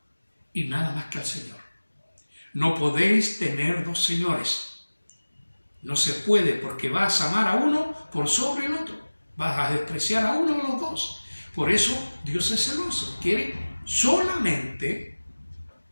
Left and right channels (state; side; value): inverted; both; correlation -1.00